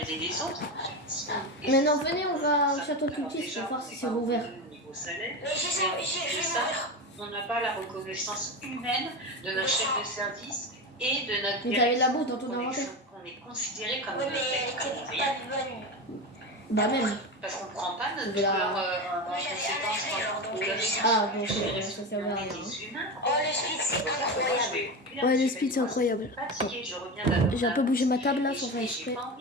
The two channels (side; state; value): both; normal; correlation 0.21